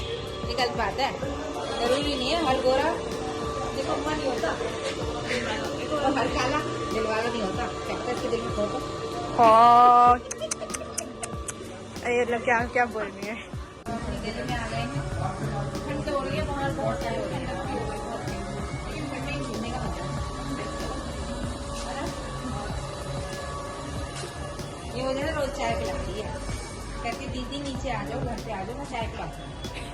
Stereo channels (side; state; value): both; identical; correlation 1.00